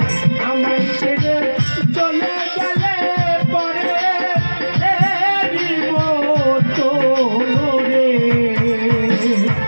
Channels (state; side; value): inverted; both; correlation -1.00